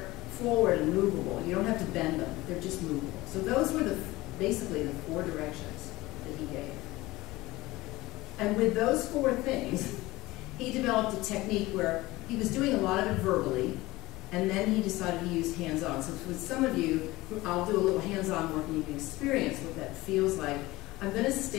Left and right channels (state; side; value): quieter; right; 19.5 dB